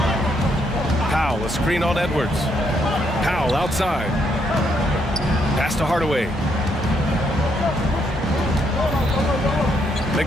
Powell, a screen on Edwards. Powell outside. Pass to Hardaway.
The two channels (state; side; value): normal; both; correlation 0.75